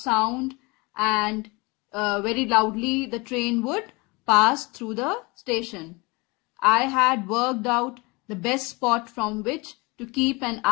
and very loudly the train would pass through the station. I had worked out the best spot from which to keep an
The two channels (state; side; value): quieter; right; 26.0 dB